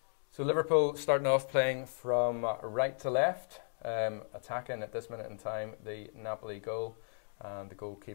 So Liverpool starting off playing from right to left, attacking at this minute in time the Napoli goal, and the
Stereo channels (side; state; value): right; silent; digital silence